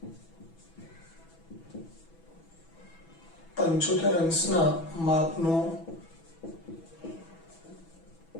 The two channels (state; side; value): late; right; 6.1 ms